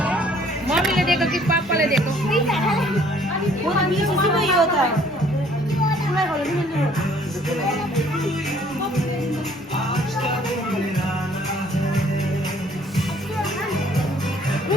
मम्मी ने देखो कि पापा ने देखो वो तो नीचे से वही होता है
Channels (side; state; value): both; normal; correlation 0.59